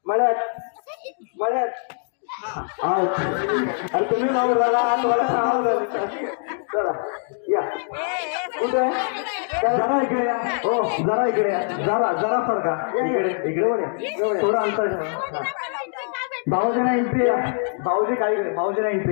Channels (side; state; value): right; silent; 63 dB below the other